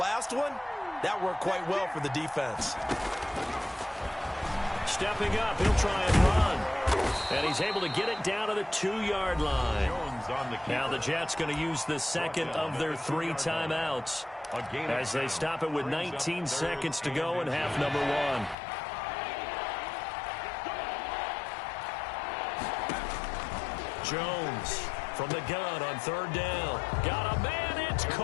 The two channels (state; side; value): drops out; right; at 18.6 s